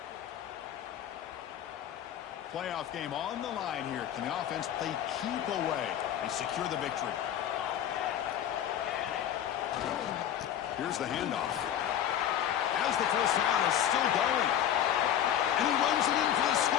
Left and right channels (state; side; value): quieter; right; 10.4 dB